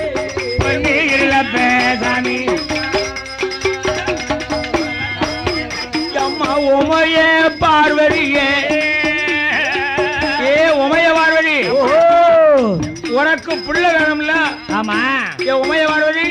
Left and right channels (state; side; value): identical; both; correlation 1.00